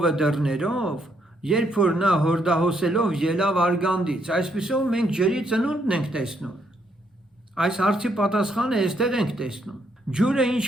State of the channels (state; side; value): normal; both; correlation 0.74